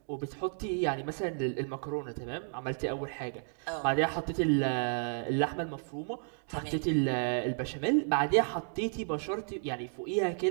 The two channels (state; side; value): silent; left; digital silence